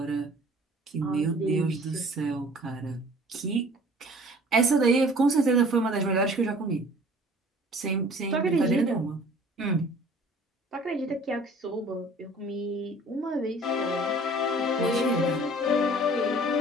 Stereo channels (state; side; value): normal; both; correlation 0.50